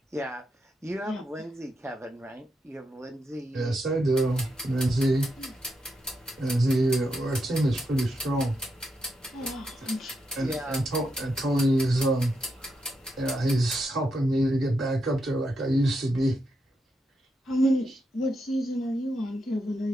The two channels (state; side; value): normal; both; correlation 0.83